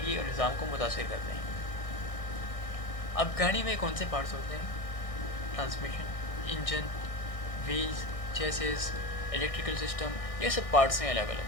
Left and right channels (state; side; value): late; right; 1.6 ms